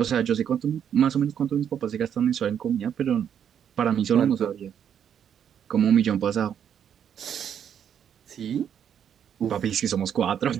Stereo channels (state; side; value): quieter; left; 8.8 dB